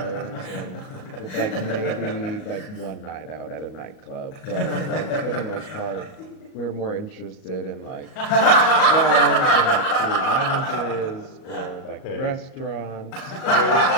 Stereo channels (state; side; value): late; right; 38 ms